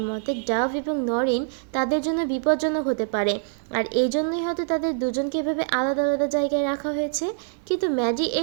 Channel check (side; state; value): left; silent; digital silence